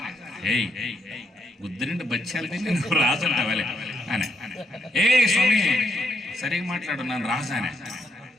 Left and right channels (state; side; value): normal; both; correlation 0.77